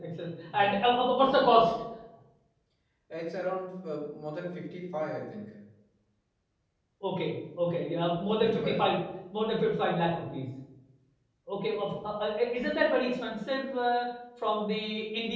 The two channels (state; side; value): identical; both; correlation 1.00